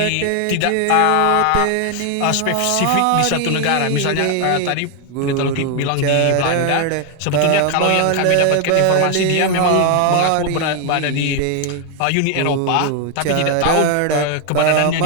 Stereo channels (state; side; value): different; both; correlation 0.00